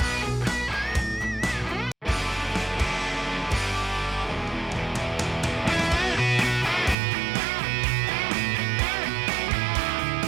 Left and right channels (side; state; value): left; drops out; at 7.0 s